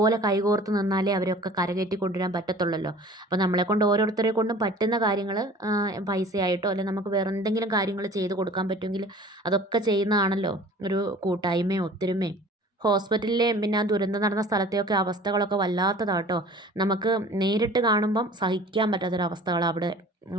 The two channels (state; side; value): normal; both; correlation 0.46